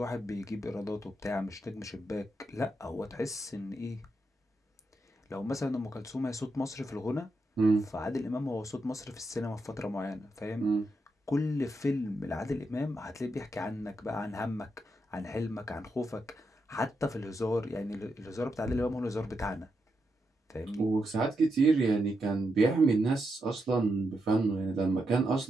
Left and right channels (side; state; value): both; normal; correlation 0.84